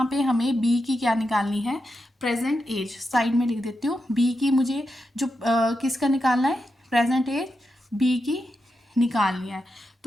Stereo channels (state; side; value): normal; both; correlation 0.87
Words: पे हमें बी की क्या निकालनी है, प्रेजेंट एज। साइड में लिख देती हूँ, बी की मुझे जो किसका निकालना है, प्रेजेंट एज बी की निकालनी है।